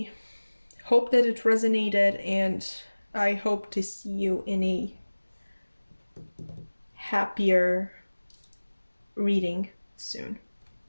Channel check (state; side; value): inverted; both; correlation -1.00